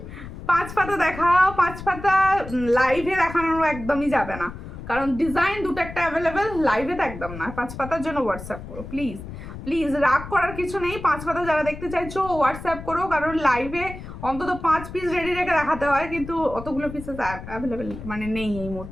5 পাতা দেখাও, 5 পাতা লাইভে দেখানোর একদমই যাবে না, কারণ ডিজাইন দুটো একটা অ্যাভেলেবেল, লাইভে তো একদম না। 5 পাতার জন্য হোয়াটসঅ্যাপ করো প্লিজ, রাগ করার কিছু নেই। 5 পাতা যারা দেখতে চাইছো হোয়াটসঅ্যাপ করো, কারণ লাইভে অন্তত 5 পিস রেডি রেখে দেখাতে হয়, কিন্তু অতগুলো পিসেস অ্যাভেলেবেল মানে নেই এই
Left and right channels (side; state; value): left; noise; rumble, 11 dB below the sound